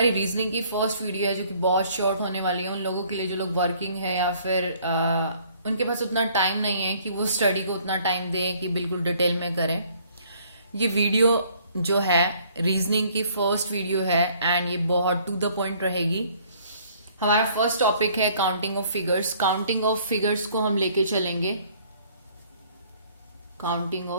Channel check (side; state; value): both; inverted; correlation -0.59